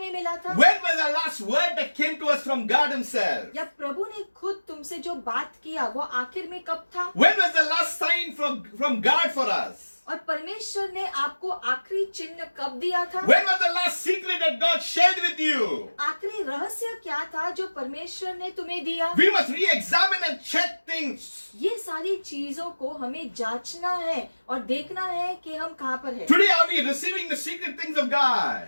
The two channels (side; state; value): both; inverted; correlation -1.00